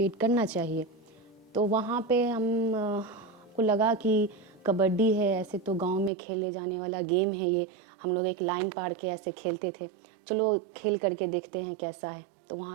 करना चाहिए। तो वहाँ पे हम को लगा कि कबड्डी है, ऐसे तो गांव में खेले जाने वाला गेम है ये। हम लोग एक लाइन पार के ऐसे खेलते थे, चलो खेल करके देखते हैं कैसा है। तो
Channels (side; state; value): left; drops out; at 6.1 s